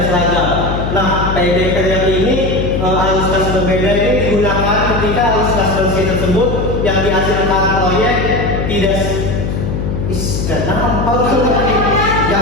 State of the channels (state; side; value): noise; left; hum, 3 dB below the sound